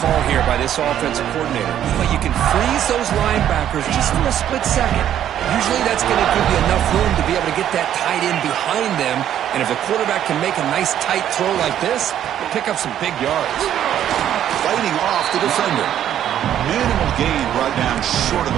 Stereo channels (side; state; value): left; quieter; 10.7 dB